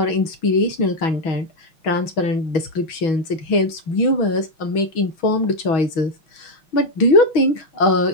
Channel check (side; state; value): right; late; 6.2 ms